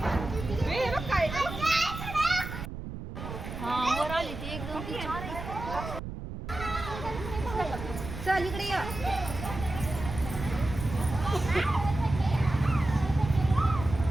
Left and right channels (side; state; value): right; noise; rumble, 8 dB below the sound